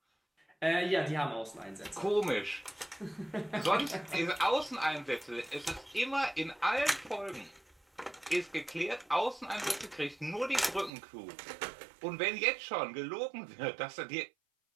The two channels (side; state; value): left; drops out; at 10.9 s